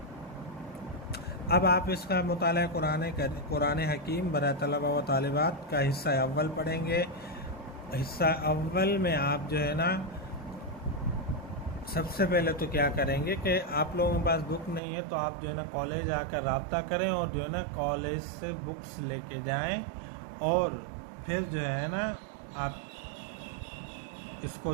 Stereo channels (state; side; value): drops out; left; at 14.8 s